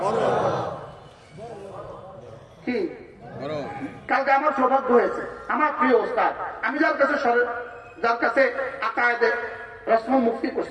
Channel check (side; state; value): both; identical; correlation 1.00